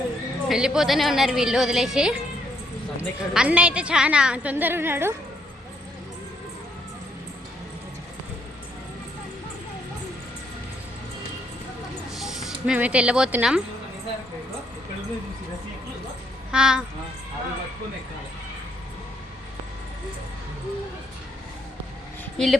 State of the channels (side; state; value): both; normal; correlation 0.71